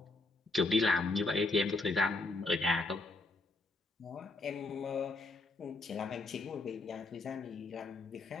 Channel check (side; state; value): right; quieter; 3.3 dB